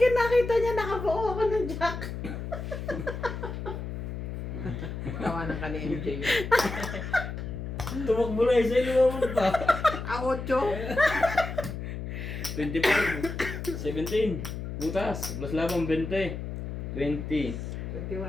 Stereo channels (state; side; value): noise; left; hum, 6 dB below the sound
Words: nakita niya nakabuo ako ng jack. Tawanan ka ni MJ. Tumakbo na isa. Lumabog pa. 8. 25. 17. Butas. Plus labang 20. 20. 21.